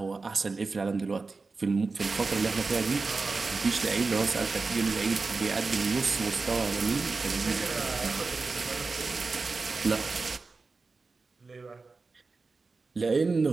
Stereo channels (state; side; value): quieter; left; 4.0 dB